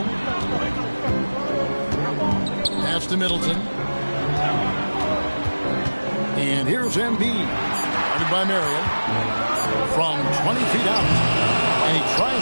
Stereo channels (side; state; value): both; inverted; correlation -1.00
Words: Pass to Middleton. And here's Embiid. Guarded by Marion. From 20 feet out. And he